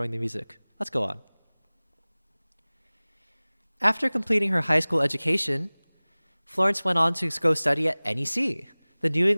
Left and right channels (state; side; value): inverted; both; correlation -1.00